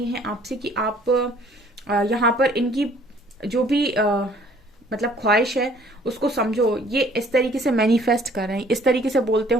हैं आपसे कि आप यहाँ पर इनकी जो भी मतलब ख्वाहिश है उसको समझो। ये इस तरीके से मैनिफेस्ट कर रहे हैं, इस तरीके से बोलते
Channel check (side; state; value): both; normal; correlation 0.58